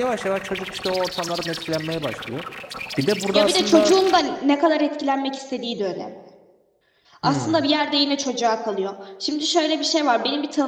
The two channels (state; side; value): identical; both; correlation 1.00